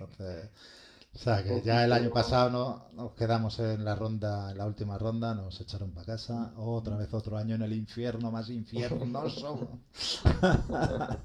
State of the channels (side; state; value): both; identical; correlation 1.00